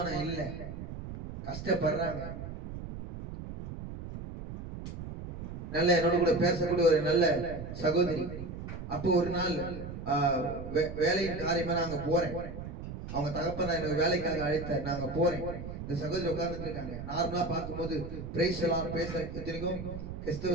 இல்லை, கஷ்டப்படுறாங்க. நல்ல என்னோட கூட பேசக்கூடிய ஒரு நல்ல சகோதரி. அப்போ ஒரு நாள் வேலையின் காரியமா நாங்க போறேன், அவங்க தகப்பன் எனக்கு வேலைக்காக அழைத்தார், நாங்க போறேன். இந்த சகோதரி உட்கார்ந்துட்டு இருக்காங்க. நார்மலா பார்க்கும்போது பிரைஸ் எல்லாம் பேச இத்தனைக்கும்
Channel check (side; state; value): right; noise; rumble, 9 dB below the sound